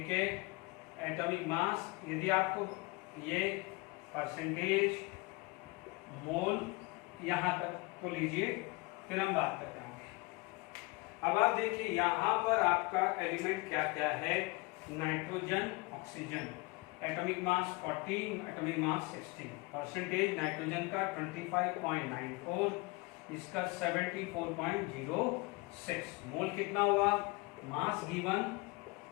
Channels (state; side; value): quieter; right; 25.7 dB